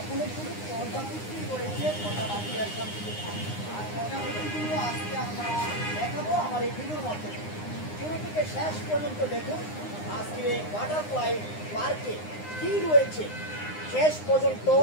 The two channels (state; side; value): late; right; 9.7 ms